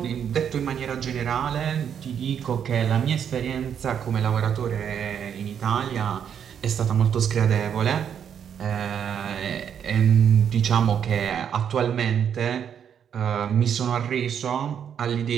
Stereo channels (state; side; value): quieter; left; 8.3 dB